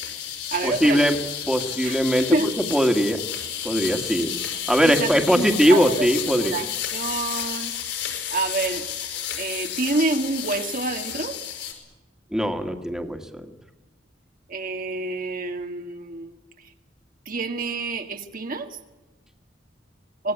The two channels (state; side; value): normal; both; correlation 0.67